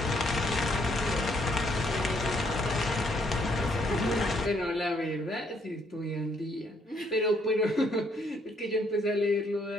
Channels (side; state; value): both; normal; correlation 0.70